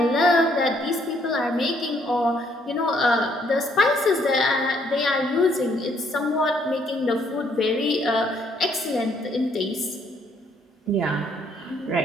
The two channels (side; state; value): both; normal; correlation 0.68